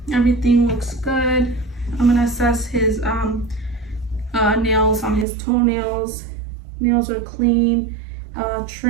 Everything looks good. I'm gonna assess his nails on his toenails. Nails are clean,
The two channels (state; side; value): drops out; left; at 5.2 s